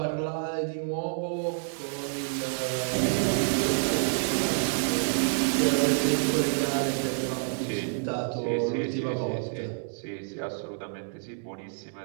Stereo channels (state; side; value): silent; left; digital silence